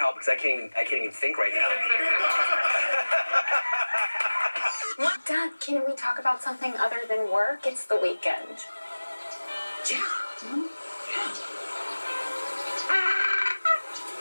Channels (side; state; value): both; inverted; correlation -1.00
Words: because I can't even think right now. Dad, can we talk about something other than work? It's the weekend. Yeah.